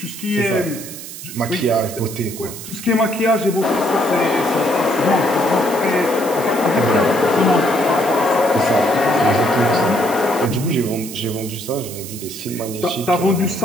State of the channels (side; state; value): right; noise; hiss, 12 dB below the sound